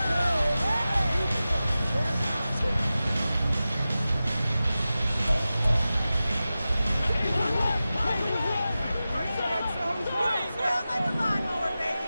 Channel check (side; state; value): both; inverted; correlation -0.94